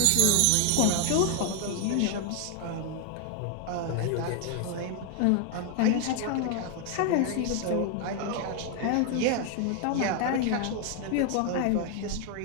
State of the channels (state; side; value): different; both; correlation 0.00